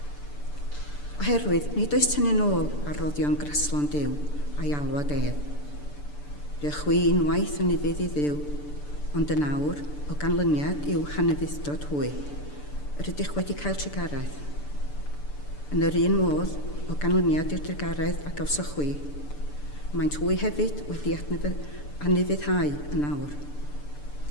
Oherwydd, nid oes tynnu'n ôl ar roddion graslon Duw a'i alwad ef. Rydych chwi unwaith yn ifydd i Dduw, ond yn awr o ganlyniad i'w hanefuddod hwy, yr ydych wedi cael trigaredd. Yn yr un modd o ganlyniad i'r trigaredd a gawsoch chwi, maent hwy hefyd wedi anufuddhau yn awr,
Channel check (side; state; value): right; late; 6.8 ms